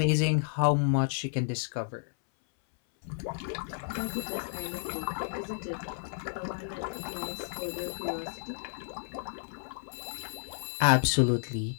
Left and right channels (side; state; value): right; silent; 57 dB below the other